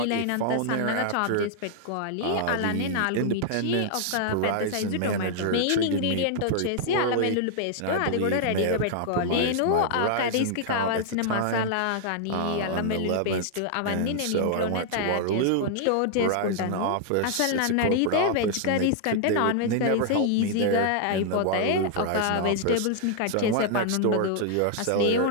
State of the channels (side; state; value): both; different; correlation -0.01